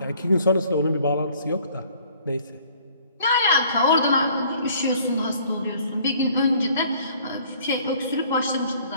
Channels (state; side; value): inverted; both; correlation -0.57